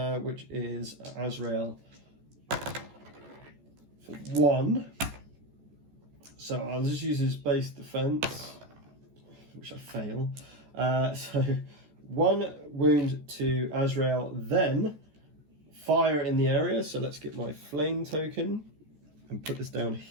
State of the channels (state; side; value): late; left; 14 ms